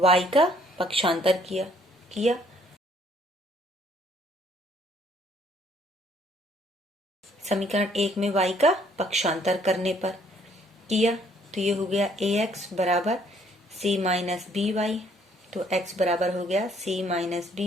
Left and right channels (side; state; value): both; normal; correlation 0.64